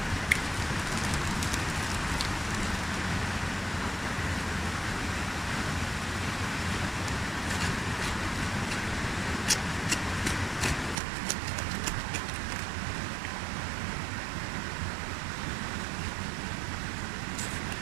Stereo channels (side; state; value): left; drops out; at 11.0 s